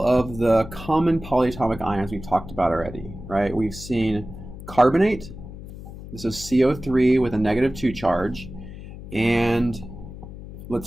of the common polyatomic ions we've talked about already, right? We've seen carbonate. This is CO3 with a -2 charge. And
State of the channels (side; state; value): left; noise; hum, 13 dB below the sound